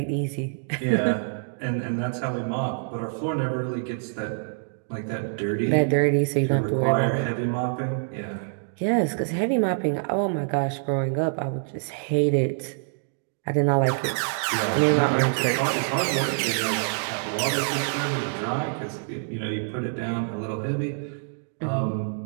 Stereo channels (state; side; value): silent; left; digital silence